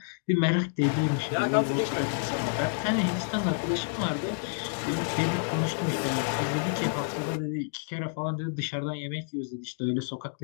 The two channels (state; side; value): silent; right; digital silence